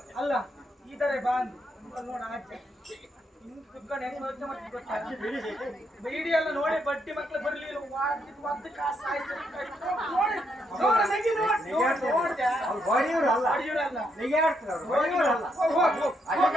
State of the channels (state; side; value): normal; both; correlation 0.77